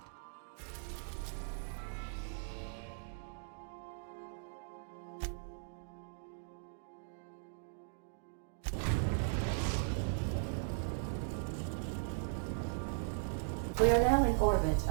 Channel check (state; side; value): silent; left; digital silence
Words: We are now in orbit